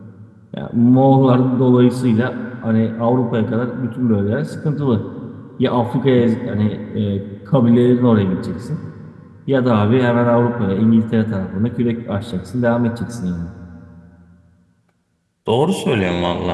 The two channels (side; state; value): both; identical; correlation 1.00